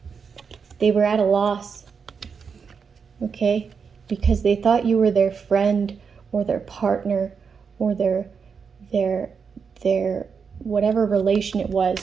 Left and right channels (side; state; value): left; quieter; 6.0 dB